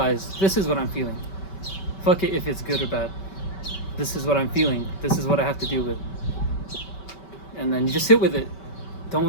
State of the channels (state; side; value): late; right; 5.2 ms